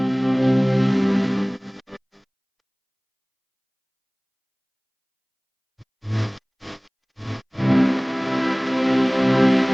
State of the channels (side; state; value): both; identical; correlation 1.00